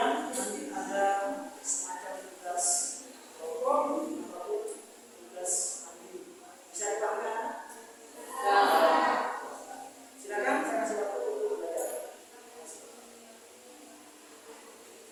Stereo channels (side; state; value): both; identical; correlation 1.00